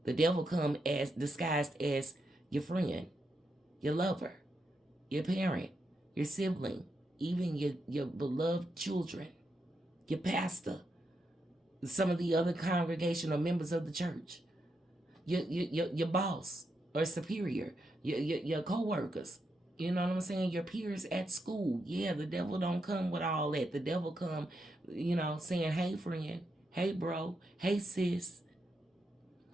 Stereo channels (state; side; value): normal; both; correlation 0.83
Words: The devil come as disguised as your friend, your lover, your parent, your sibling, even your beloved children, your pastor, some of the other congregational members of the church, your boss or superior, your co-workers. You know what I'm saying? Your peers at school. Yeah, the devil don't come with all that. The devil come, saying, hey, friend, hey, bro, hey, sis,